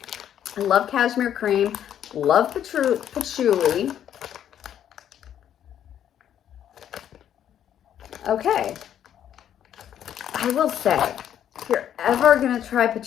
I love cashmere cream. Love patchouli. Okay. I will say, if you're ever going to try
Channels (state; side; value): quieter; right; 10.1 dB